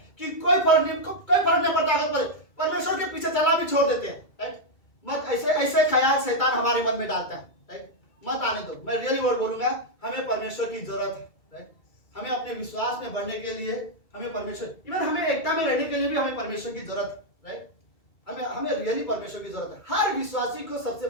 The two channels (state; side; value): late; right; 2.3 ms